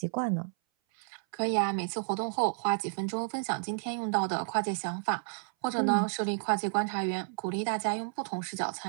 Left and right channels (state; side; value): silent; left; 57 dB below the other